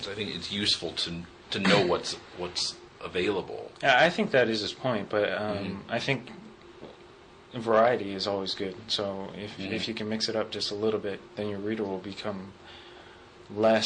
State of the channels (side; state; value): both; identical; correlation 1.00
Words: I think it's useful to know what's available. Yeah, I think that is his point, but I think variety is always good. So if you can mix it up just a little bit, then your reader will become